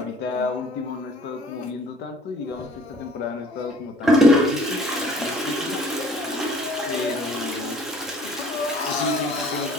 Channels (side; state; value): both; normal; correlation 0.53